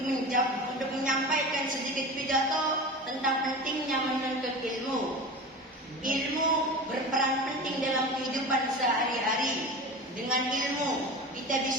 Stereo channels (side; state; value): both; normal; correlation 0.31